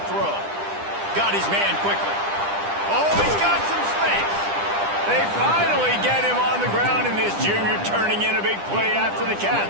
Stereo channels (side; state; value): left; late; 10 ms